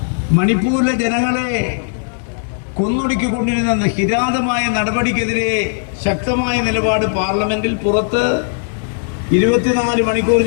മണിപ്പൂരിലെ ജനങ്ങളെ കൊന്നൊടുക്കിക്കൊണ്ടിരുന്ന കിരാതമായ നടപടിക്കെതിരെ ശക്തമായ നിലപാട് പാർലമെന്റിൽ പുറത്ത് 24 മണിക്കൂർ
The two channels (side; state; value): right; silent; digital silence